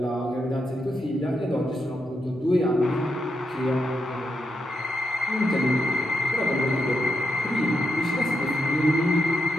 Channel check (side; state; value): both; normal; correlation 0.83